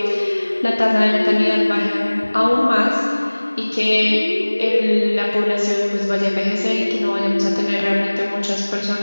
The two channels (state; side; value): inverted; both; correlation -1.00